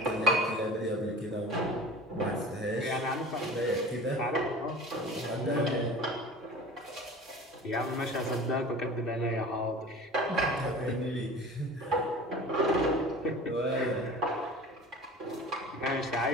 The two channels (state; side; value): normal; both; correlation 0.39